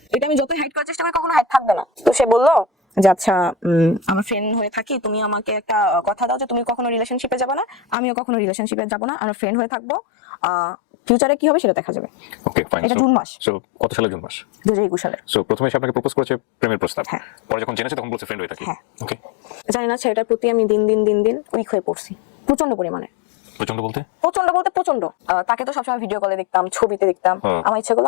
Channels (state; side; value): drops out; right; at 8.0 s